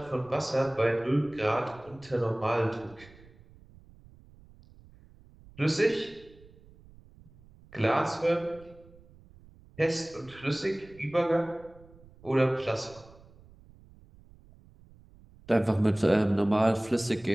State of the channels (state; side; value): noise; right; rumble, 24 dB below the sound